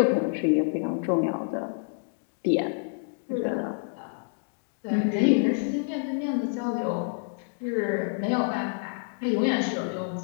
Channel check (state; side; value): silent; right; digital silence